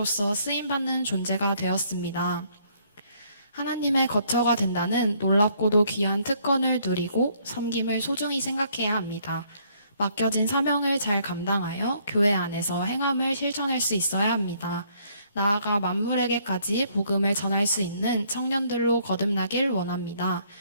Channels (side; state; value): both; inverted; correlation -0.66